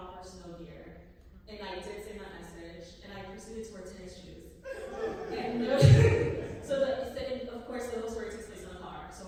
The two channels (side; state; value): both; identical; correlation 1.00